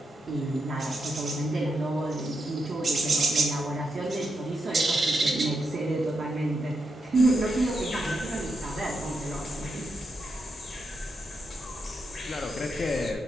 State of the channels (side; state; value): both; normal; correlation 0.84